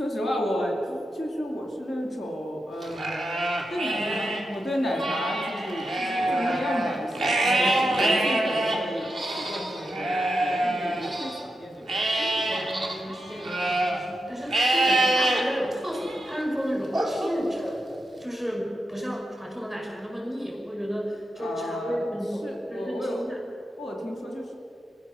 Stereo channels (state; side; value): normal; both; correlation 0.88